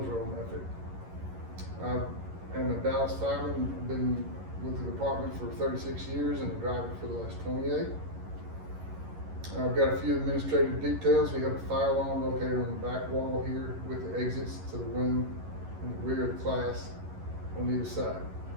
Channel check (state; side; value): late; left; 11 ms